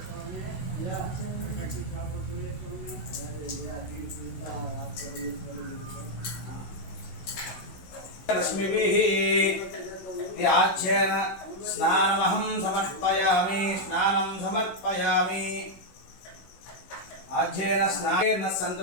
रश्मिभिः त्याज्येन स्नानमहं समर्पयामि। स्नानं समर्पयामि। आज्येन स्नानेन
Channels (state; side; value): late; right; 16 ms